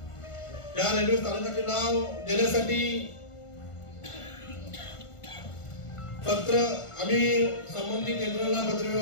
या रेल्वे स्थानकाचे नाव देण्यासाठी पत्र आम्ही संबंधित केंद्राला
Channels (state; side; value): late; right; 1.5 ms